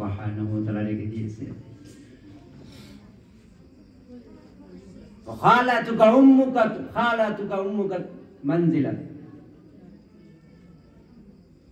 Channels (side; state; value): both; identical; correlation 1.00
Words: ওয়া তাআলা রেখে দিয়েছে। খালাতুকা উম্মুকা মানজিলা,